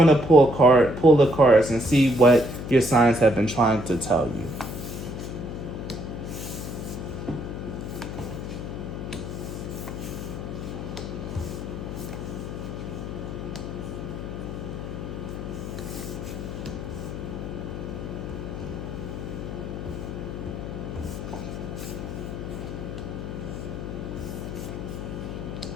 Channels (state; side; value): noise; left; hum, 6 dB below the sound